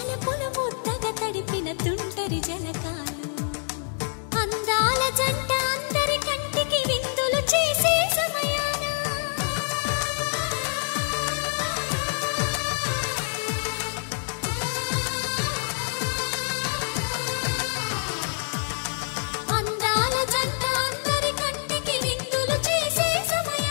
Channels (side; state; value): right; silent; 61 dB below the other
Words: ముద్దగా తడిపిన తుంటరి జలకాలు అందాల జంట అందరి కంటికి విందులు చేసే సమయాన అందాల జంట అందరి కంటికి విందులు చేసే